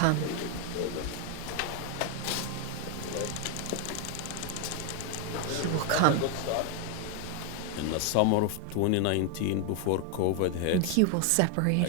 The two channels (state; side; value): different; both; correlation 0.01